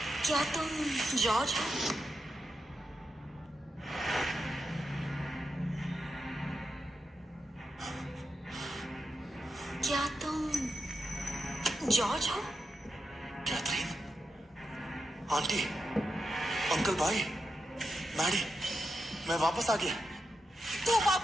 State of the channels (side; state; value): both; normal; correlation 0.87